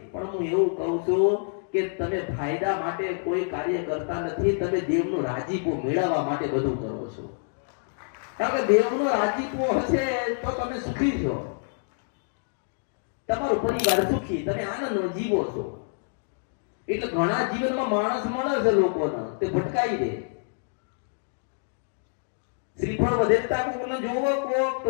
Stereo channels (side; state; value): right; silent; digital silence